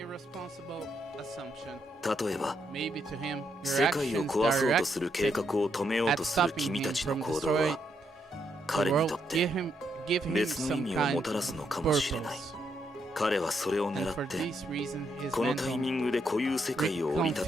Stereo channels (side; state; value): both; normal; correlation 0.78